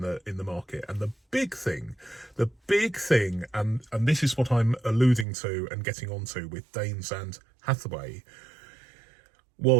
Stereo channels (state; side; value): drops out; left; at 5.2 s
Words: the market. And the big thing, and this is what I'm alluding to and getting onto with Daines and Hathaway,